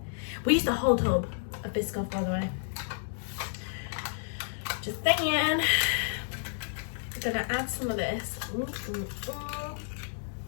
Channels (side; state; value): right; silent; digital silence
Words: we used a whole tub of biscoff, by the way. Just saying. I'm gonna add some of this.